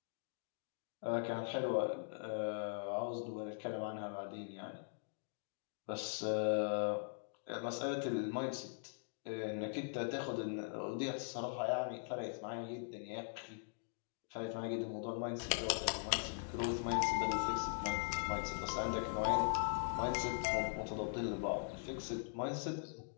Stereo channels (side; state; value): right; silent; digital silence